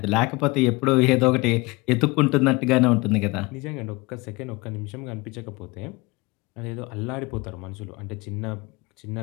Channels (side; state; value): right; quieter; 24.8 dB